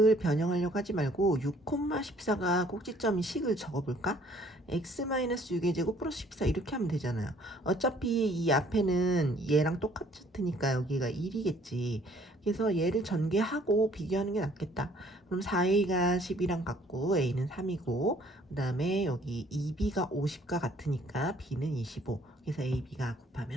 변형하려고 하지 말고 6,14가 꼭지점인 식을 적어볼까? x-6의 제곱 플러스 14 이렇게 하면 되잖아요. 어차피 이 앞에는 얘랑 똑같으니까 여기가 1이겠지. 그래서 얘를 전개하고 비교하는 게 낫겠다. 그럼 4a가 10이랑 같고 a는 3이고 그 다음에 여기 2b가 50과 같으니까 b는 25. 그래서 ab가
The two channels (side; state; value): both; normal; correlation 0.60